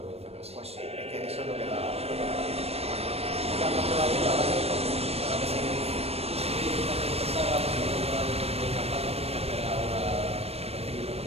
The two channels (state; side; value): late; left; 0.29 ms